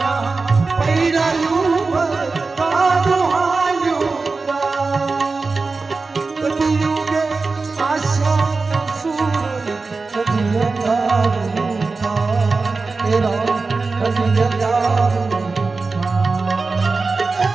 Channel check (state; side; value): quieter; left; 4.0 dB